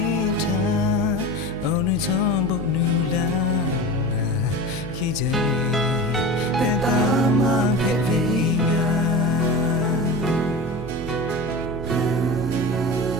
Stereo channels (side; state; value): right; noise; hum, 12 dB below the sound